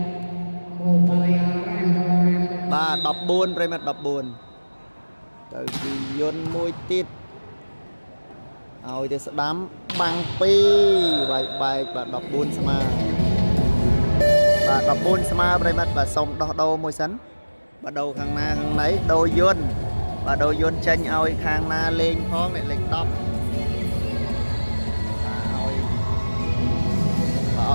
បាទ14ប្រិមិត្ត14ទៅពីយន្តមួយទៀតឲ្យទៅស្ដាំបាំង2បែកបាទ14ស្មើបាទ14ស្មើប្រិមិត្តបាទសុំដោះដូរមួយសិនបាទដូរខាងណាខាងណីដូរយន្តបាទដូរយន្តចេញឲ្យខាងណាលេងផងអ្នកលេខ10បាទឲ្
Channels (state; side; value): inverted; both; correlation -1.00